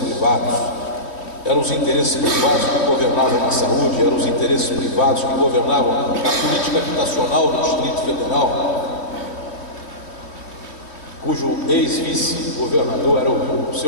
Eram os interesses privados que governavam na saúde, eram os interesses privados que governavam na política habitacional do Distrito Federal, cujo ex-vice-governador era o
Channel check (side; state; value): right; late; 3.1 ms